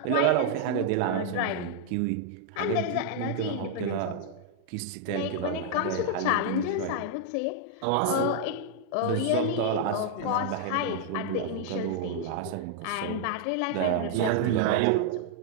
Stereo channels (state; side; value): different; both; correlation -0.01